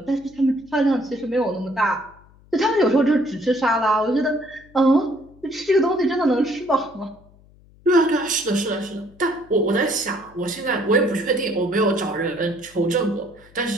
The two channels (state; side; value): noise; left; hum, 27 dB below the sound